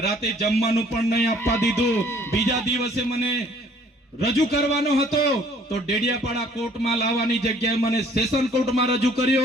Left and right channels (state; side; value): normal; both; correlation 0.58